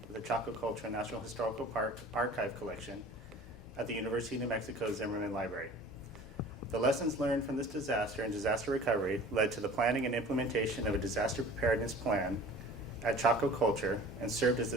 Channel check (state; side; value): normal; both; correlation 0.44